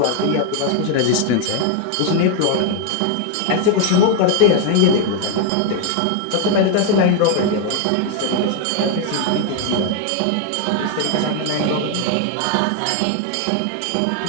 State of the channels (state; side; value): different; both; correlation 0.00